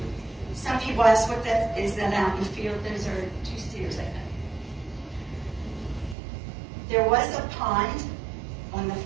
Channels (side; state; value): left; drops out; at 6.2 s